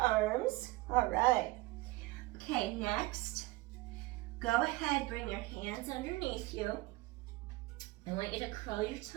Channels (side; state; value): left; quieter; 20.8 dB